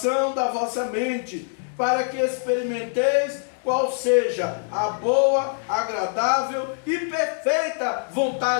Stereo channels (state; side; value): silent; right; digital silence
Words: da vossa mente, para que experimenteis qual seja a boa, agradável e perfeita